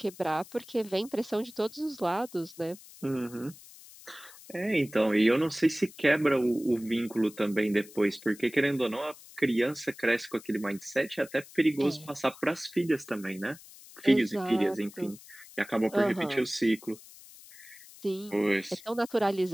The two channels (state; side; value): noise; left; hiss, 20 dB below the sound